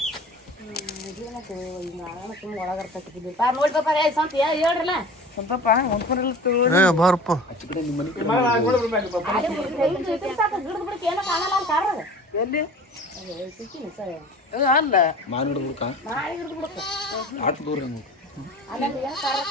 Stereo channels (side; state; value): both; normal; correlation 0.40